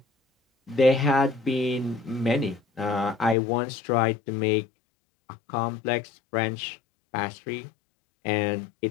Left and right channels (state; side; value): drops out; right; at 3.4 s